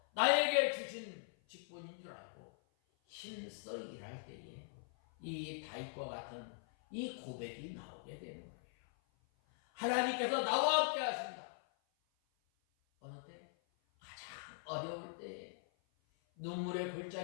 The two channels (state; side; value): silent; right; 50 dB below the other